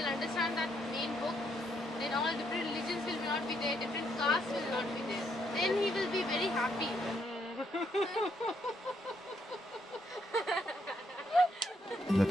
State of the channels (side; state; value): both; normal; correlation 0.74